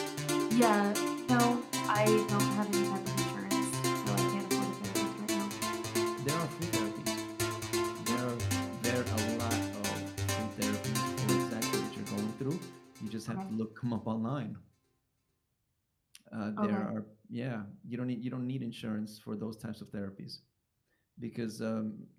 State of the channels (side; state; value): both; identical; correlation 1.00